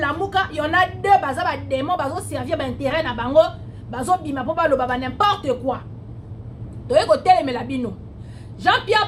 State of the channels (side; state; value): both; identical; correlation 1.00